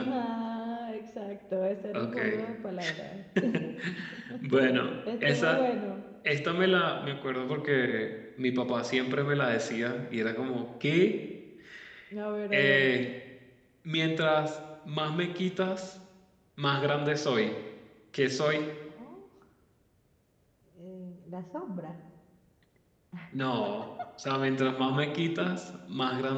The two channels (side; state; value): both; identical; correlation 1.00